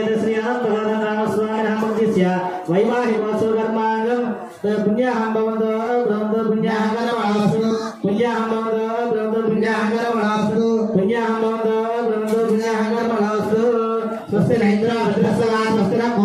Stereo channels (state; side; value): identical; both; correlation 1.00